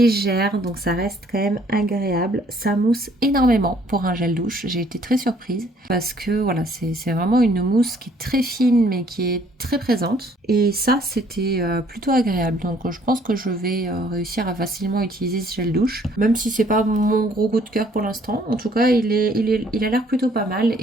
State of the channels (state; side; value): normal; both; correlation 0.61